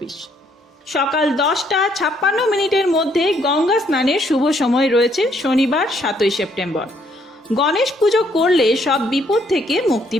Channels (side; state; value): both; normal; correlation 0.69